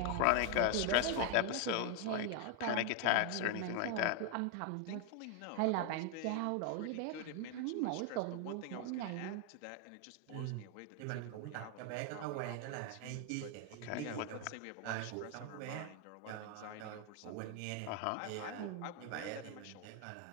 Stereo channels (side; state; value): both; different; correlation 0.01